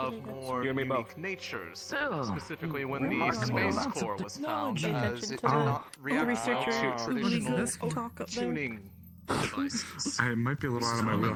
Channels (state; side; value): identical; both; correlation 1.00